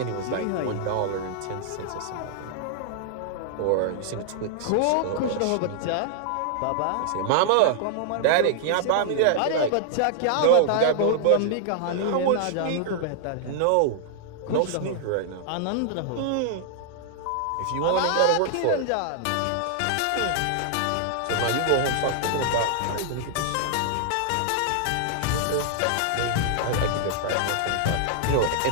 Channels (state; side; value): different; both; correlation -0.01